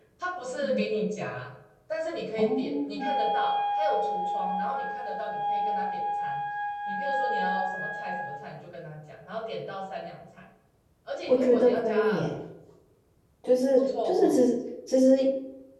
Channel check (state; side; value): identical; both; correlation 1.00